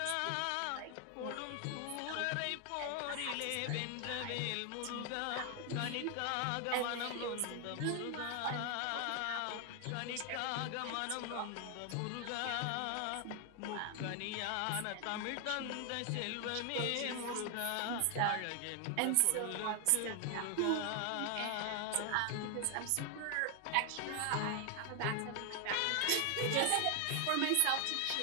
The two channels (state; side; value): different; both; correlation 0.00